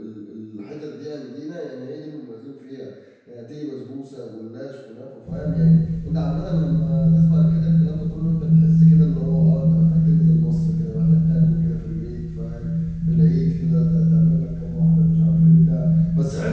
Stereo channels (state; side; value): identical; both; correlation 1.00